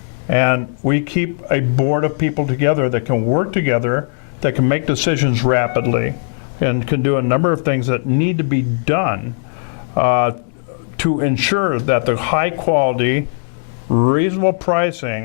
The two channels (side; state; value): right; silent; digital silence